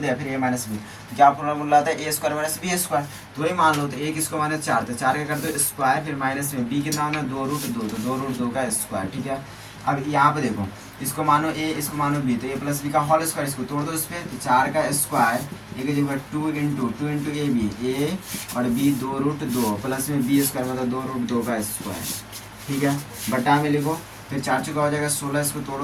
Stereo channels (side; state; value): both; identical; correlation 1.00